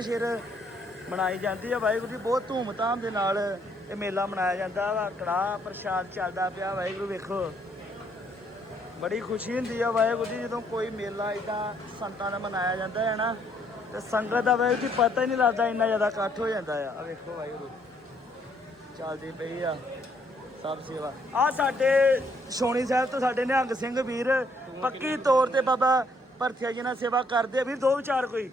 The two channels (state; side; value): normal; both; correlation 0.68